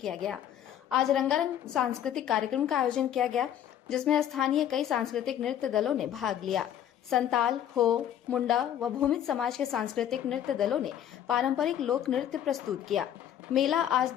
गया। आज रंगारंग सांस्कृतिक कार्यक्रम का आयोजन किया गया, जिसमें स्थानीय कई सांस्कृतिक नृत्य दलों ने भाग लिया। संताल, हो, मुंडा व भूमिज समाज के सांस्कृतिक नृत्य दलों ने पारंपरिक लोक नृत्य प्रस्तुत किया। मेला आज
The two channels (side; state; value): right; quieter; 10.5 dB